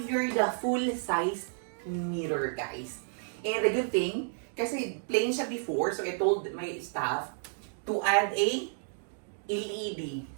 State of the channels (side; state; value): left; silent; digital silence